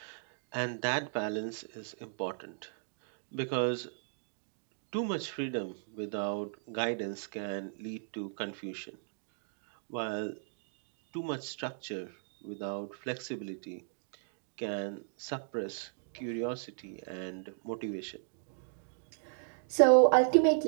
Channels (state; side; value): silent; left; digital silence